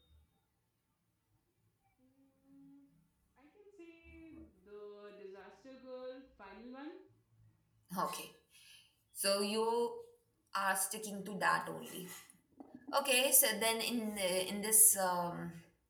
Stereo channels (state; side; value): identical; both; correlation 1.00